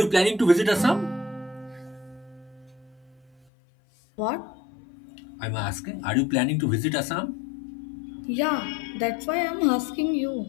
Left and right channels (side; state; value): right; drops out; at 3.3 s